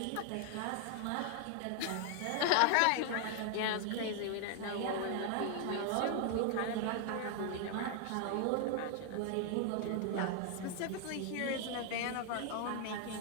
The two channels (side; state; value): both; different; correlation 0.00